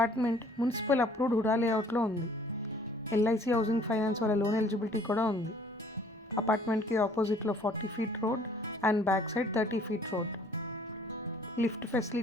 మున్సిపల్ అప్రూవ్డ్ హుడా లేఅవుట్లో ఉంది. LIC హౌసింగ్ ఫైనాన్స్ వాళ్ళ లోన్ ఎలిజిబిలిటీ కూడా ఉంది. అపార్ట్మెంట్కి ఆపోజిట్లో 40 feet road and back side 30 feet road. Lift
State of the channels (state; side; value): normal; both; correlation 0.57